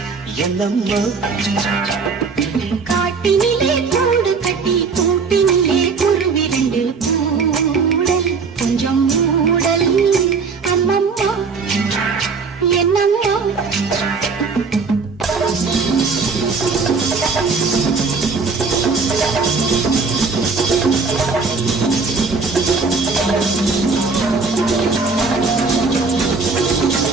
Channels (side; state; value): left; quieter; 4.7 dB